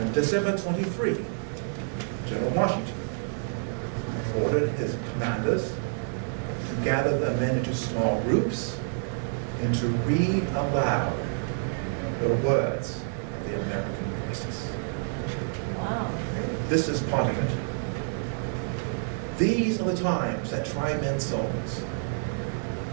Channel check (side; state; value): left; silent; 59 dB below the other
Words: On December 23, General Washington ordered his commanders to gather the men into small groups and to read aloud the words of the American crisis. Wow. This is part of it. These are the times that try men's souls.